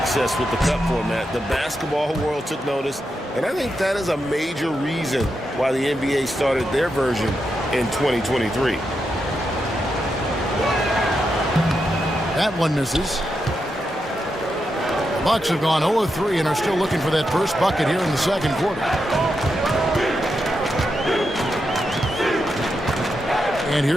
with the Cup format. The basketball world took notice, and I think that is a major reason why the NBA started their version in 2023. That one misses. Bucks have gone 0-3 and are still looking for that first bucket here in the second quarter. And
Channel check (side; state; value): both; normal; correlation 0.85